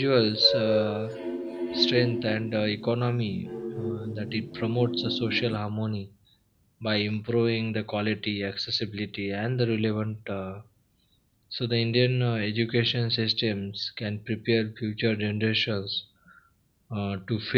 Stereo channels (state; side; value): identical; both; correlation 1.00